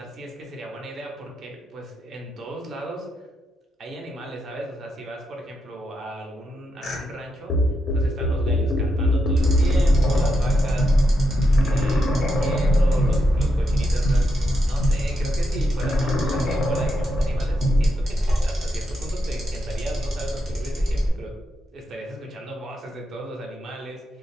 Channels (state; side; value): normal; both; correlation 0.84